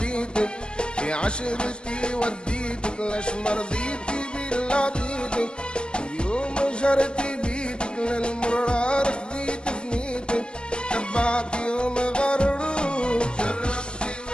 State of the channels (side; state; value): right; late; 0.053 ms